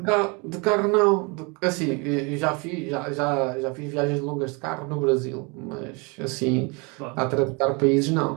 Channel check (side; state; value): left; quieter; 30.4 dB